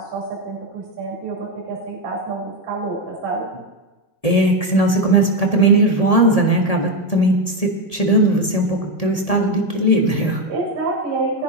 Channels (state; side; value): late; right; 1.7 ms